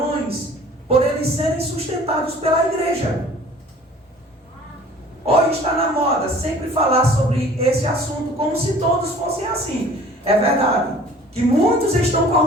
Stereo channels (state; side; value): normal; both; correlation 0.49